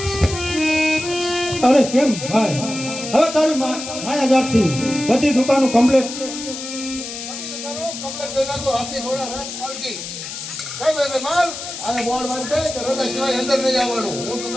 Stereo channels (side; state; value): left; noise; hiss, 8 dB below the sound